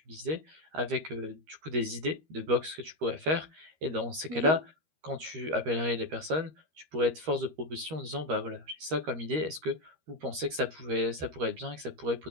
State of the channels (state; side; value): late; left; 13 ms